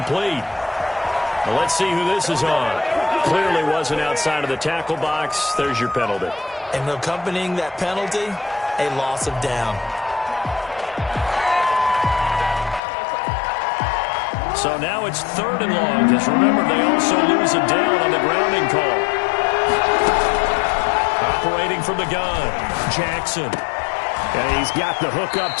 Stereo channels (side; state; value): right; drops out; at 12.8 s